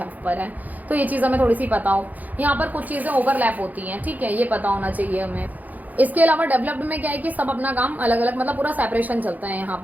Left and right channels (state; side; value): late; left; 0.081 ms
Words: पर है। तो ये चीज़ हमें थोड़ी सी पता हो, यहाँ पर कुछ चीज़ें ओवरलैप होती हैं, ठीक है, ये पता होना चाहिए हमें। इसके अलावा डेवलप्ड में क्या है कि सब अपना काम अलग अलग, मतलब पूरा सेपरेशन चलता है यहाँ